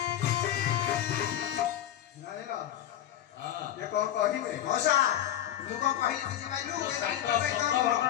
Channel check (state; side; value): quieter; right; 11.7 dB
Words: କଣ କହିବେ ମଉସା ମୁଁ କଣ କହିଲି ବୁଝିପାରିଲୁ ସତ